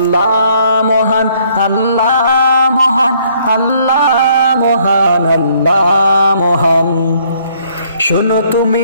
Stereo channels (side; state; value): both; inverted; correlation -0.65